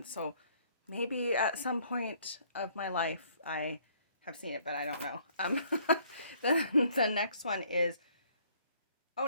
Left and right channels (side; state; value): both; inverted; correlation -0.62